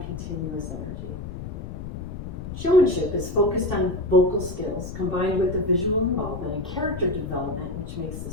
continuous energy. Showmanship is focused on vocal skills combined with the visual involvement and character development, which makes the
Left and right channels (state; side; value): noise; left; rumble, 9 dB below the sound